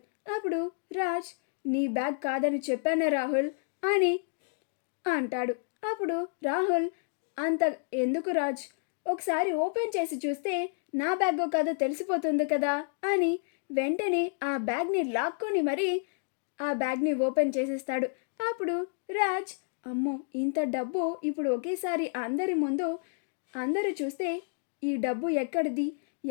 అప్పుడు రాజ్, నీ బ్యాగ్ కాదని చెప్పానా రాహుల్ అని అంటాడు. అప్పుడు రాహుల్, అంత ఎందుకు రాజ్, ఒకసారి ఓపెన్ చేసి చూస్తే నా బ్యాగో కాదో తెలిసిపోతుంది కదా అని వెంటనే ఆ బ్యాగ్ని లాక్కొని మరీ ఆ బ్యాగ్ని ఓపెన్ చేసేస్తాడు. అప్పుడు రాజ్, అమ్మో, ఇంత డబ్బు ఇప్పుడు ఒకేసారి అందరి ముందు అందరూ చూస్తే ఈ డబ్బు ఎక్కడిది,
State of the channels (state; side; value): silent; right; digital silence